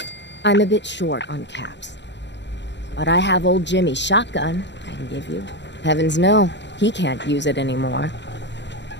I'm a bit short on caps. But I have old Jimmy's shotgun I can give you. Heavens no, he can't use it anymore.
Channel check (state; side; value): late; right; 0.52 ms